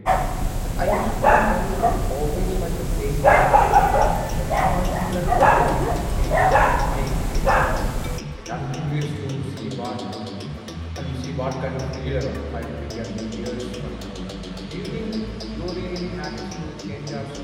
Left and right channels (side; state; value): both; identical; correlation 1.00